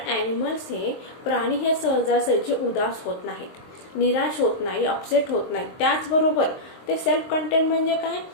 ॲनिमल्स हे प्राणी हे सहजासहजी उदास होत नाहीत, निराश होत नाही, अपसेट होत नाही. त्याचबरोबर ते सेल्फ कंटेंट म्हणजे काय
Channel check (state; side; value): late; right; 23 ms